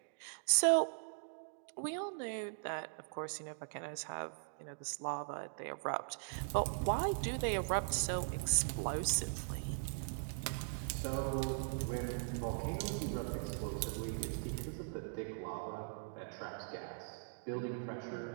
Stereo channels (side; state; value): left; silent; digital silence